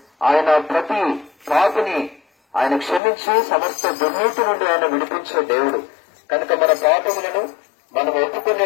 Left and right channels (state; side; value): drops out; right; at 3.0 s